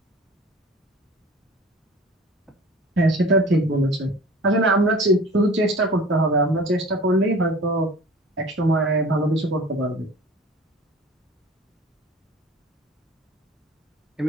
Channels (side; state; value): both; normal; correlation 0.43